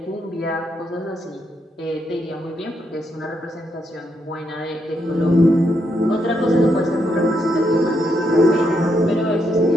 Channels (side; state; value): both; normal; correlation 0.79